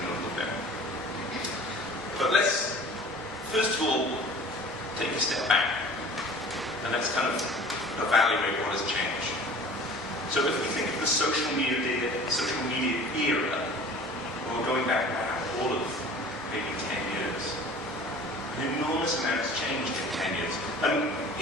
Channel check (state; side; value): normal; both; correlation 0.44